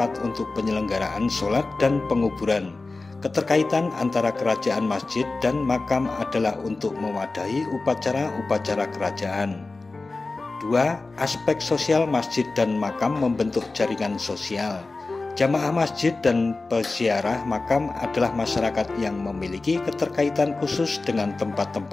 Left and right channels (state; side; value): quieter; right; 3.5 dB